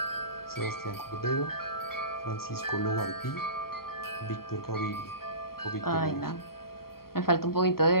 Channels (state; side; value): late; right; 0.93 ms